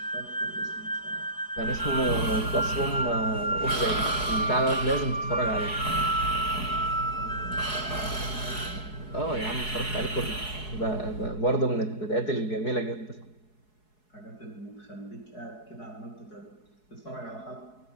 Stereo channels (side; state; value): right; late; 4.7 ms